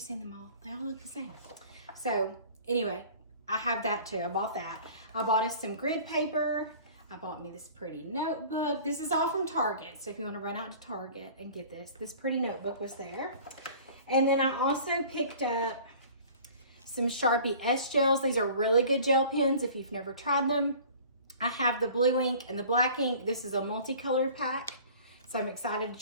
them all? They all look the same. So anyway, I have that too. I bought that. I bought us some grid paper. I bought me this pretty notebook. This is all from Target. So if you want to run out to Target and get this pretty notebook was there. And then I also picked up some Sharpie S gels. These are really good gel pens if you've never tried them. I have the blue ink and the black ink. This is a multicolored pack, so I'm excited to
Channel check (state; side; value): inverted; both; correlation -0.46